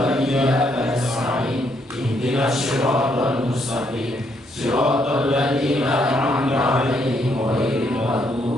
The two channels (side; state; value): both; normal; correlation 0.73